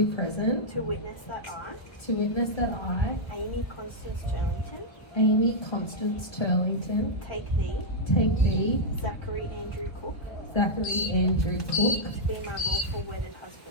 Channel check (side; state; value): right; late; 1.4 ms